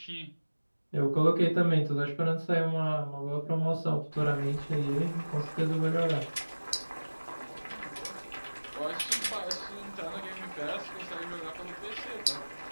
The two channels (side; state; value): both; inverted; correlation -1.00